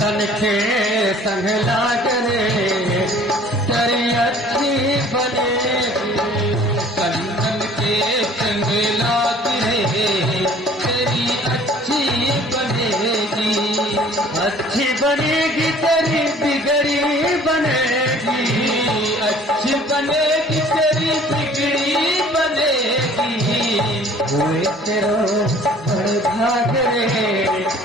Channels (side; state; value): both; normal; correlation 0.52